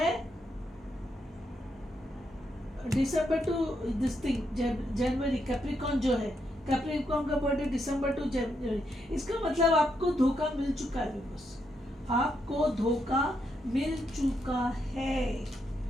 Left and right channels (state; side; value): normal; both; correlation 0.80